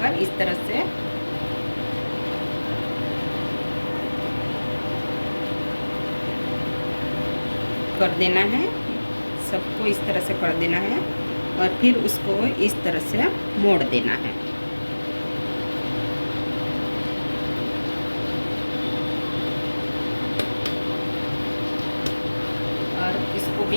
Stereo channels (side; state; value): both; inverted; correlation -1.00